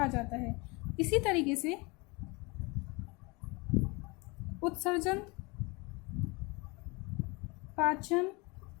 जाता है। इसी तरीके से उत्सर्जन, पाचन,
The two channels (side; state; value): right; quieter; 27.3 dB